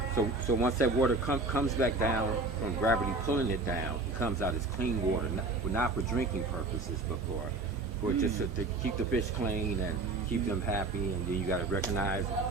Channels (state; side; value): quieter; left; 3.4 dB